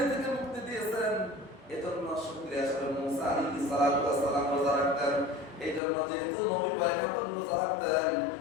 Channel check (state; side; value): drops out; right; at 5.8 s